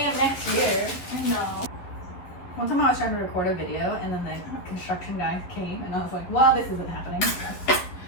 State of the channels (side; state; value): right; late; 11 ms